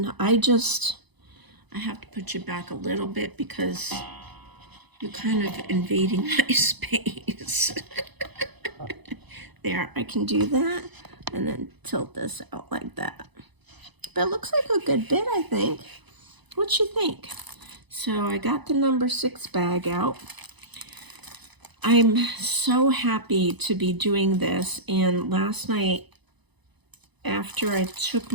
I have to put you back a little bit because you're kind of invading my space. There, I can do that and then tilt this out like that. But it looks like a good bit, I think. What you think? So I got the number 6 bag out. I'm so happy to be doing this. And last night, after I took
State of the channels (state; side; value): late; left; 1.0 ms